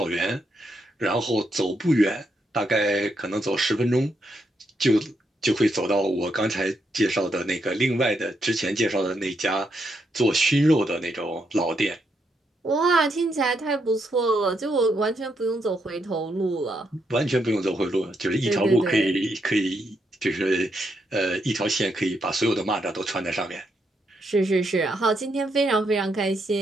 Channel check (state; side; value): normal; both; correlation 0.79